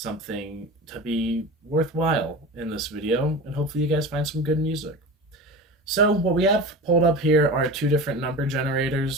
to be worthwhile in this video, and hopefully you guys find some good music. So what we have pulled up here are two different number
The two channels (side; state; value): both; normal; correlation 0.31